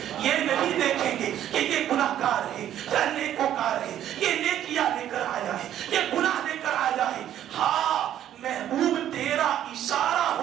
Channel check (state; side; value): quieter; left; 11.2 dB